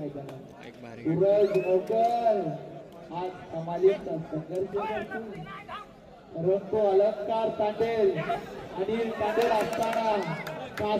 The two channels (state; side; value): identical; both; correlation 1.00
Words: सूरज मोकर आज कमालीचा संघर्ष करतो. परंतु अलंकार तांडेल अनिल तांडेल असताना